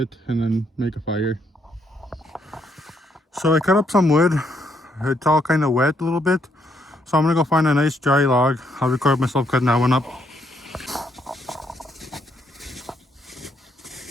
and then make a fire. So I cut up some wood. It's all kind of wet a little bit. So I'm gonna go find a nice dry log. I'll record myself cutting that one up.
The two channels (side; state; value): both; normal; correlation 0.74